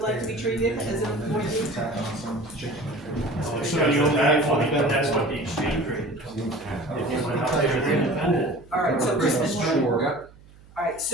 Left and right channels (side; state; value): right; noise; hum, 24 dB below the sound